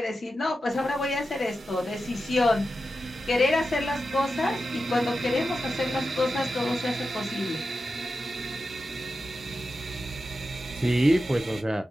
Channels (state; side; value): normal; both; correlation 0.90